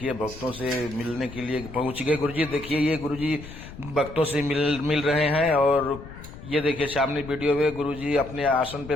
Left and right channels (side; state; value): left; noise; rumble, 14 dB below the sound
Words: भक्तों से मिलने के लिए पहुंच गए गुरुजी। देखिए ये गुरुजी भक्तों से मिल रहे हैं और ये देखिए सामने वीडियो में गुरुजी अपने आसन